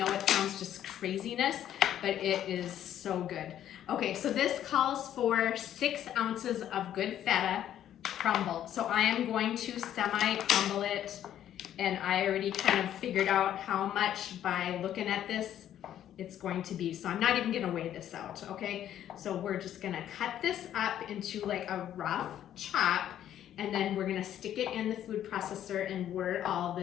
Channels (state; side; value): quieter; right; 11.0 dB